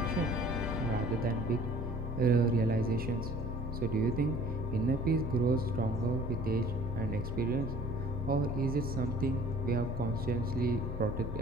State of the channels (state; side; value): normal; both; correlation 0.51